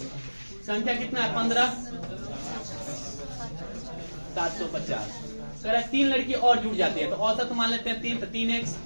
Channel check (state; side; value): inverted; both; correlation -1.00